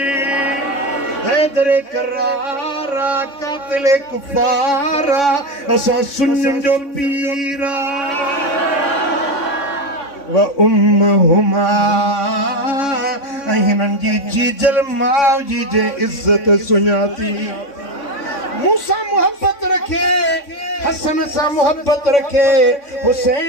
हैदर करारा कातिल कुफारा असां सुन्नियुनि जो पीर व उम्मुहुमा ऐं हिननि जी जीजल माउ जी जे इज़त सुञाती। मूंसां मुहबत रखे, हसन सां मुहबत रखे,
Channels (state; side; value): late; right; 3.6 ms